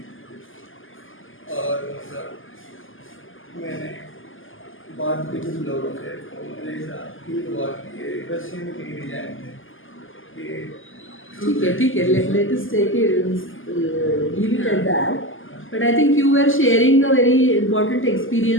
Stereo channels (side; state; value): right; late; 0.58 ms